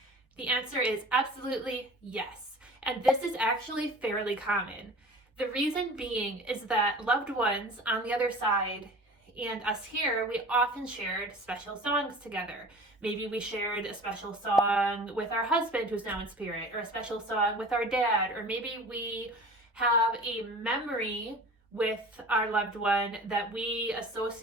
The answer is absolutely yes. And this is actually fairly common. The reason being is that loved ones on the other side and us here, we often shared special songs together. Maybe we shared a special song with our husband who's now in spirit, or a special song with our dad, or maybe we have a memory with our loved one that we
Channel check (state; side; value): normal; both; correlation 0.41